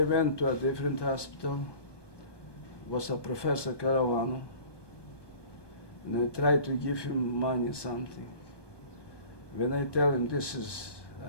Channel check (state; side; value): late; right; 1.2 ms